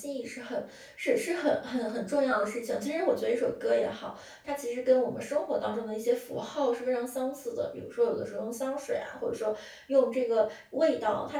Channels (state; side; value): identical; both; correlation 1.00